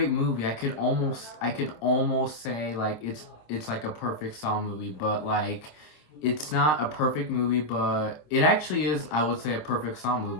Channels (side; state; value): right; late; 26 ms